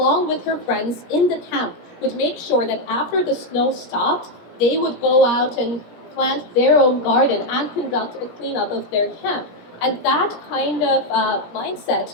with her friends in the camp, would make sure that after the snow stopped, they would go out and plant their own garden and conduct a cleanup of their camp. And that kind of mindset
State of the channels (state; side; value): late; right; 17 ms